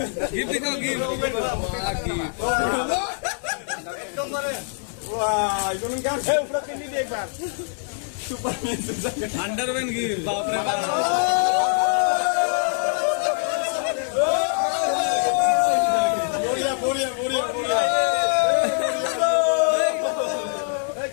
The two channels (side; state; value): right; silent; 63 dB below the other